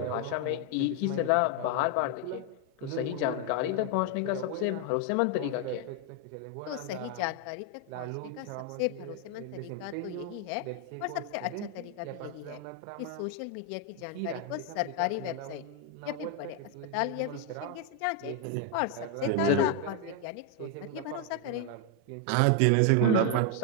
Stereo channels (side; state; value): both; different; correlation 0.01